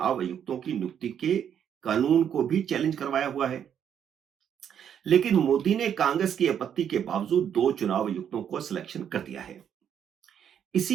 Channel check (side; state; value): left; quieter; 8.8 dB